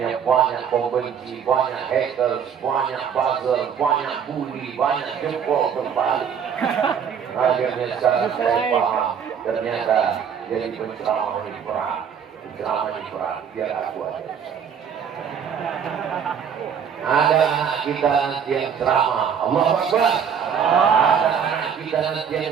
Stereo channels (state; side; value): quieter; left; 7.6 dB